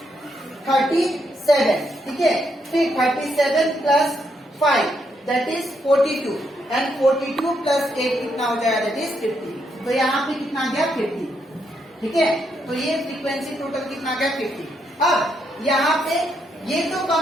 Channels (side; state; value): both; normal; correlation 0.78